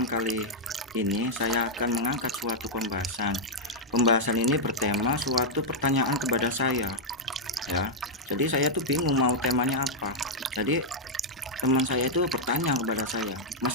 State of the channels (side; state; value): both; normal; correlation -0.04